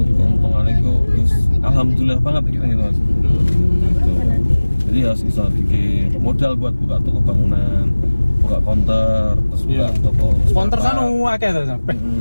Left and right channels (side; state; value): both; inverted; correlation -1.00